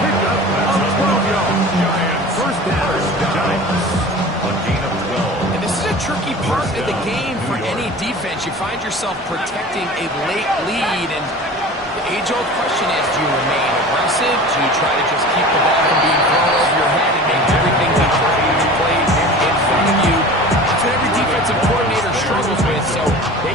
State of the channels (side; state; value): both; normal; correlation 0.38